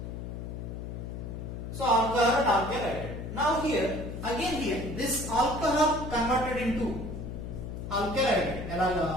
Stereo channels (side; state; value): left; noise; hum, 7 dB below the sound